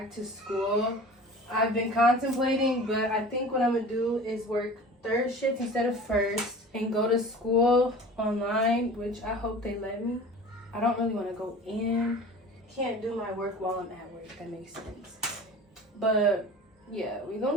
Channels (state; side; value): normal; both; correlation 0.40